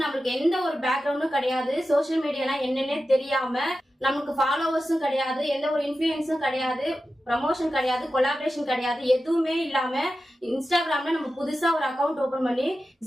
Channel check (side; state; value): both; normal; correlation 0.92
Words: நம்மளுக்கு எந்த ஒரு பேக்ரவுண்டும் கிடையாது, சோசியல் மீடியாலாம் என்னன்னே தெரியாம, நமக்கு ஃபாலோவர்ஸும் கிடையாது, எந்த ஒரு இன்ஃபுளுன்ஸும் கிடையாது, ப்ரமோஷன் கிடையாது, கொலாபரேஷன் கிடையாது, எதுவுமே இல்லாம இன்ஸ்டாகிராம்ல நம்ம புதுசா ஒரு அக்கௌண்ட் ஓபன் பண்ணி